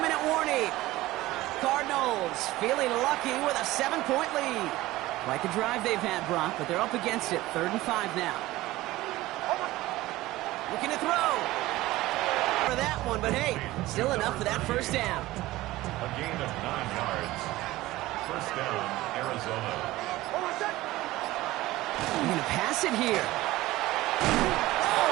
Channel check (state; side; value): quieter; left; 17.6 dB